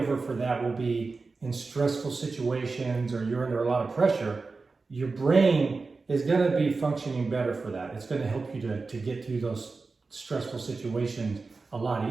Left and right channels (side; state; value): left; quieter; 4.1 dB